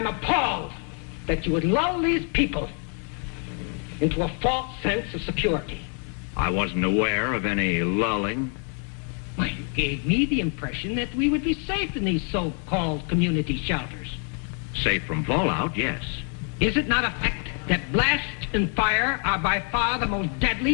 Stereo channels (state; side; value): quieter; right; 39.6 dB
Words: appalled that you would lull these people into a false sense of security. I wasn't aware of any lulling. Well, you gave me the impression that we would be safe in these so-called community shelters. Safe from fallout, yes. Is it not a fact that blast and fire are by far the most